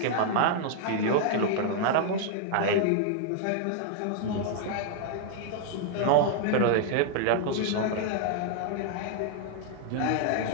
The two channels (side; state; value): both; different; correlation -0.01